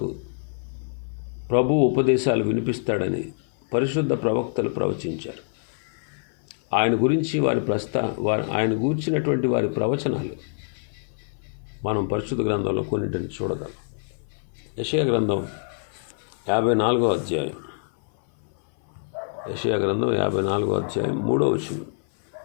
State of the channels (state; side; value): silent; right; 57 dB below the other